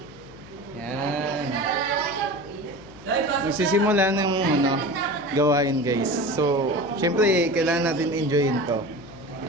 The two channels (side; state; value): left; noise; hum, 20 dB below the sound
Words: Yan. Magsisimula ng gawain guys. So, syempre kailangan natin enjoyin to.